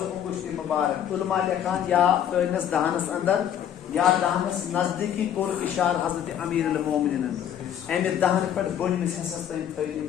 गुश्ती मुबारक उलमा लिखान या तनस दहनस अंदर या दहनस नजदीकी कोर इशार हजरत अमीर अल मोमिनीन अमे दहन पे बोनिस हिस्सस तन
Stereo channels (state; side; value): quieter; right; 9.8 dB